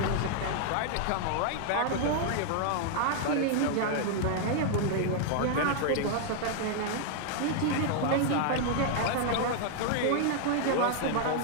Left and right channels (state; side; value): different; both; correlation -0.01